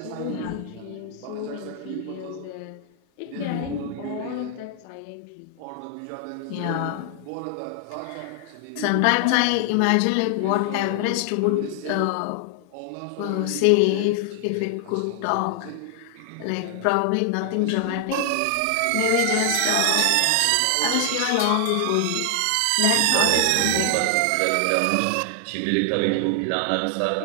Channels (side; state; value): both; different; correlation 0.00